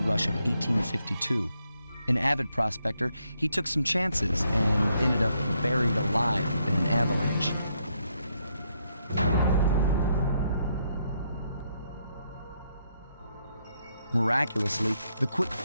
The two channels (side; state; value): both; inverted; correlation -0.77